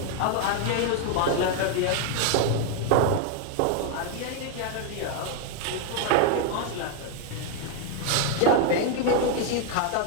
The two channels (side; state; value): both; different; correlation 0.01